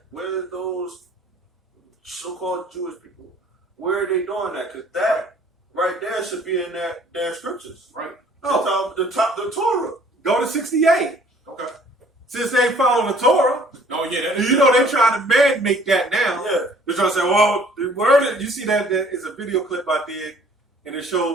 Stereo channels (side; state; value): both; normal; correlation 0.56